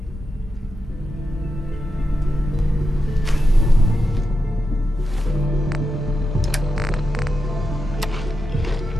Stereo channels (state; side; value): normal; both; correlation 0.88